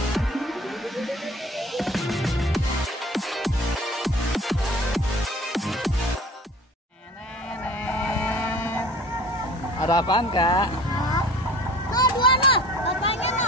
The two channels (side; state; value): both; normal; correlation 0.44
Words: apaan, Kak? Nah, dua noh, bapaknya